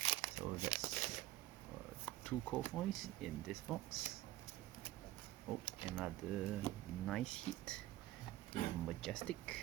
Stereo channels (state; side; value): quieter; left; 15.8 dB